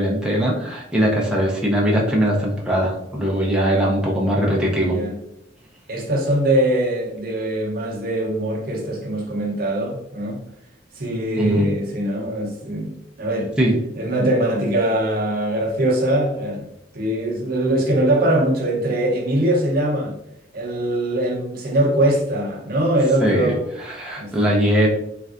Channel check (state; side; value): normal; both; correlation 0.45